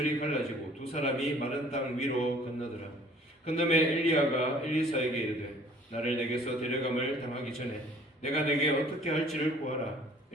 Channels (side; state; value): both; normal; correlation 0.54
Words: 갈라지고 두 사람이 마른 땅 위로 건너더라. 건너매 엘리야가 엘리사에게 이르되 나를 내게서 데려감을 당하기 전에 내가 내게 어떻게 할지를 구하라.